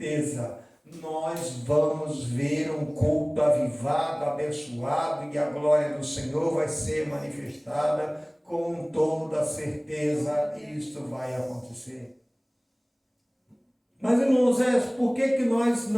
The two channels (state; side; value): identical; both; correlation 1.00